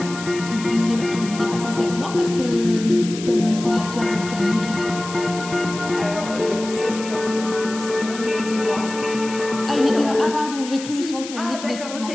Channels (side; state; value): left; noise; hiss, 12 dB below the sound